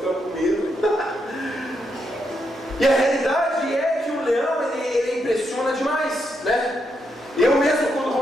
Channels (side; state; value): both; normal; correlation 0.81